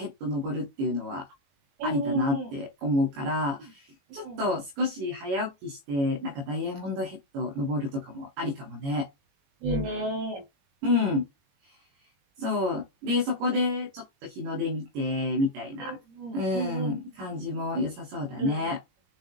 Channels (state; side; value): late; left; 21 ms